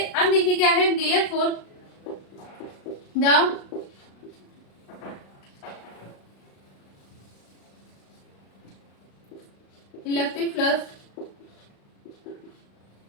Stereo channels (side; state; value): right; late; 36 ms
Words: अब देखिए क्या है, therefore the electric flux